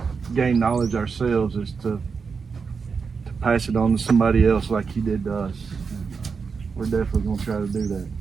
gain knowledge ourselves, is to pass it on to somebody else like he did to us. We're definitely going to try to do that.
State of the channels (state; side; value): quieter; left; 5.4 dB